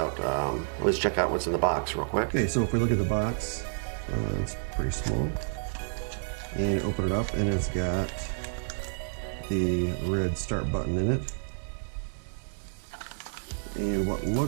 Let's check out what's in the box real quick. Okay, so if we look at the box, it's pretty small. And open it up, and it's got the red start button in it. And what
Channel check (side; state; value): left; silent; digital silence